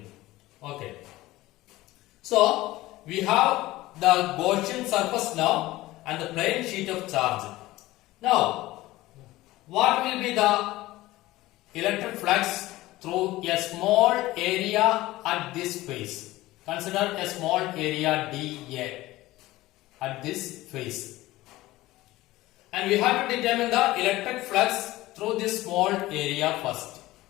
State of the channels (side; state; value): right; quieter; 17.7 dB